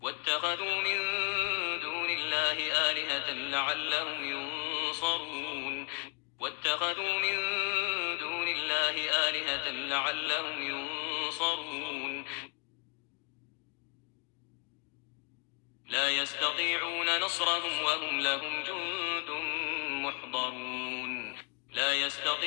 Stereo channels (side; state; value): right; quieter; 34.7 dB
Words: واتخذوا من دون الله آلهة لعلهم ينصرون واتخذوا من دون الله آلهة لعلهم ينصرون لا يستطيعون نصرهم وهم لهم جند محضرون لا